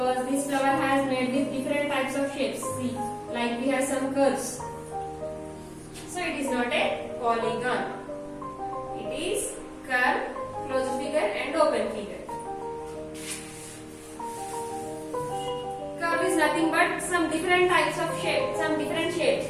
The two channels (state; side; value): identical; both; correlation 1.00